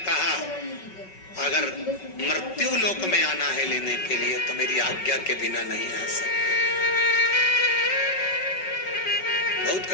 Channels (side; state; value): right; late; 5.3 ms